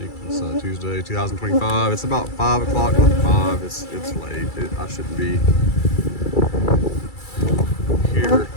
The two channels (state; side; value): late; right; 2.3 ms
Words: it's Tuesday, 2025. It's about 5 o'clock. Look, 5. It's late. I shouldn't be here